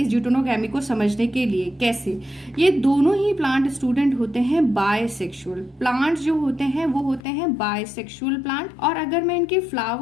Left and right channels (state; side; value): drops out; right; at 7.2 s